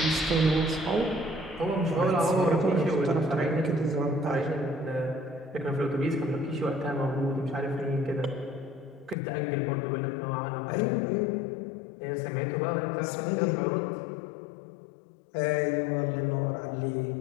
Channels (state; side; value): drops out; right; at 9.2 s